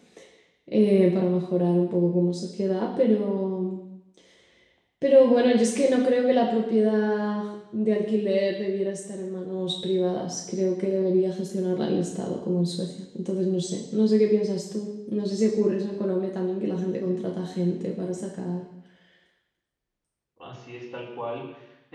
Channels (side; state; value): both; identical; correlation 1.00